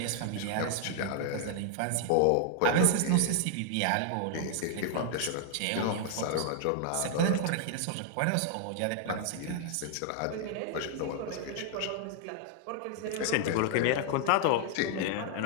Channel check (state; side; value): different; both; correlation 0.00